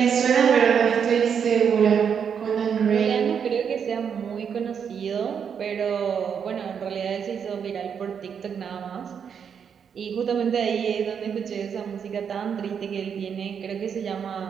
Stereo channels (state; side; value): quieter; left; 7.3 dB